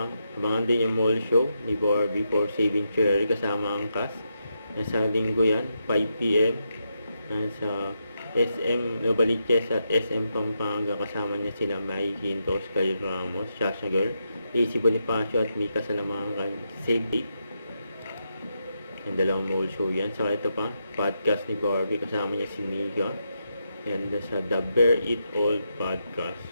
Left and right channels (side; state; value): both; inverted; correlation -0.84